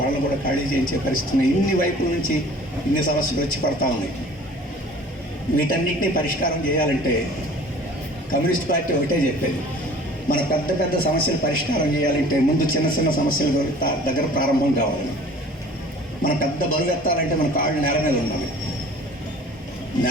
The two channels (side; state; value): both; normal; correlation 0.47